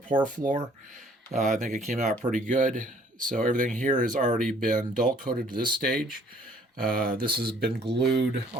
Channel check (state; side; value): normal; both; correlation 0.59